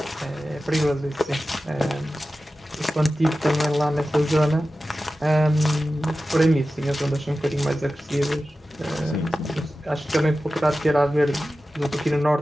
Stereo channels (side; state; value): both; normal; correlation 0.94